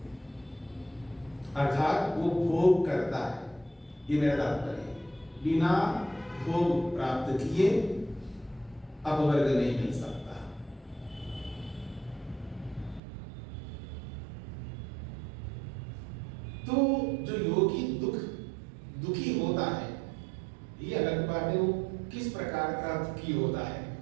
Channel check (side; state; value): left; drops out; at 13.0 s